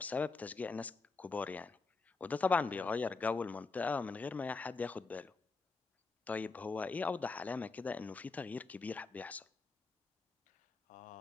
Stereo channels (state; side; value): quieter; right; 4.2 dB